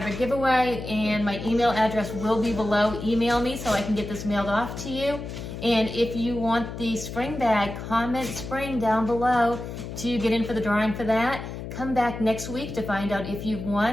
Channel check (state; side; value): noise; left; hum, 8 dB below the sound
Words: giveaway, and my email address will be below. Email me so I can get this mailed off to you. And if you want the spring bag, comment spring down below to get in for the drawing for that. Come back next week to find out if you've